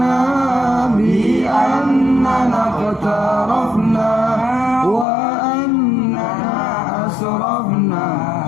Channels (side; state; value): right; drops out; at 5.1 s